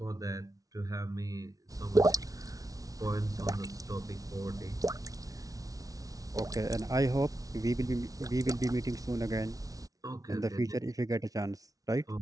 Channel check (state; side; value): late; left; 0.18 ms